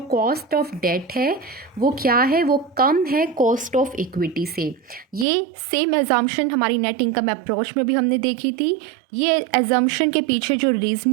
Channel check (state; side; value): drops out; left; at 5.2 s